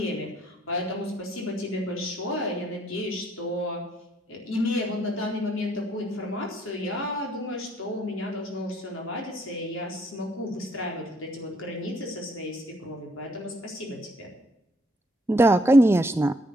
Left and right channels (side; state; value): both; normal; correlation 0.67